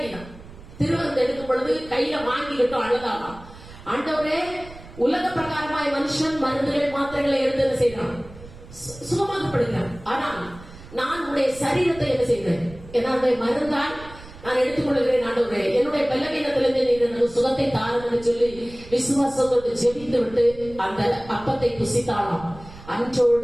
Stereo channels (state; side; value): noise; right; rumble, 18 dB below the sound